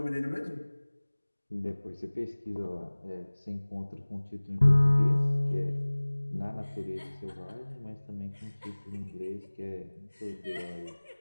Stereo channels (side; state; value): both; inverted; correlation -1.00